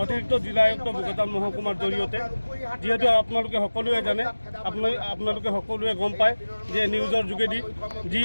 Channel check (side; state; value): both; inverted; correlation -1.00